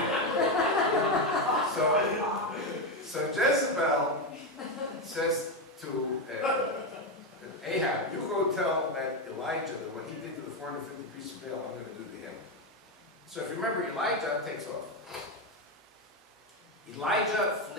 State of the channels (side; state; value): both; normal; correlation 0.09